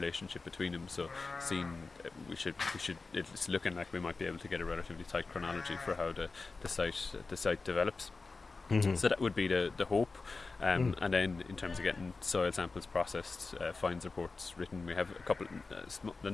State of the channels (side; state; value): right; quieter; 4.0 dB